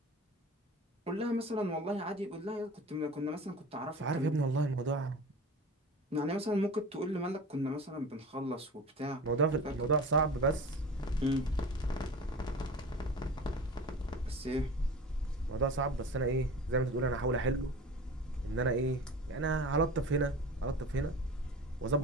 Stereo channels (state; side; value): normal; both; correlation 0.36